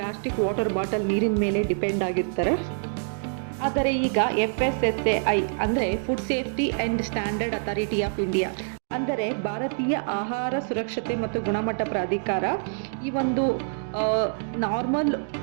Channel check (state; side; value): silent; left; digital silence